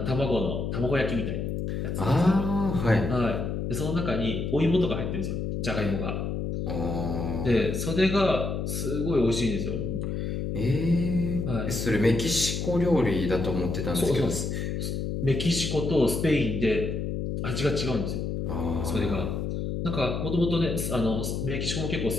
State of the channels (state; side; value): noise; left; hum, 2 dB below the sound